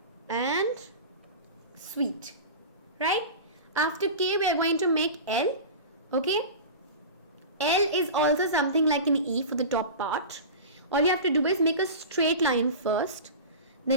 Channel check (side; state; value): both; inverted; correlation -0.31